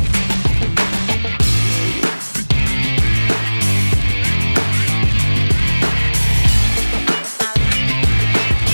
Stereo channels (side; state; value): both; inverted; correlation -1.00